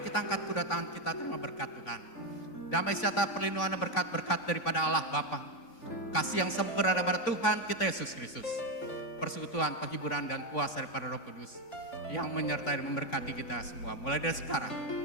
kita angkat kedua tangan kita terima berkat Tuhan. Damai sejahtera perlindungan dan berkat-berkat daripada Allah Bapa. Kasih yang sempurna daripada Tuhan kita Yesus Kristus. Persekutuan, penghiburan dan kuasa daripada Roh Kudus yang menyertai dan memberkati kita semua. Mulai dari sekarang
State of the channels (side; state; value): right; late; 3.5 ms